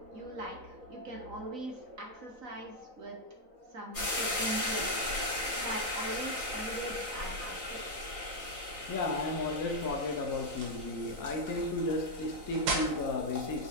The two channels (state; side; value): late; left; 3.9 ms